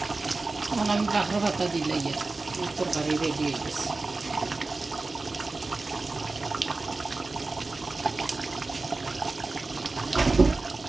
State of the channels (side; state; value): left; quieter; 3.5 dB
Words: এখন আমি বাকর পাতা দিলে তরকারি রেডি হয়ে গেছে